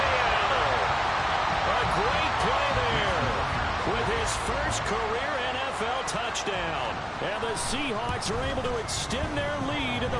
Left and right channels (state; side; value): identical; both; correlation 1.00